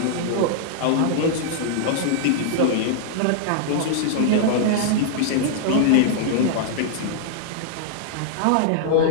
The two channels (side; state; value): both; different; correlation -0.01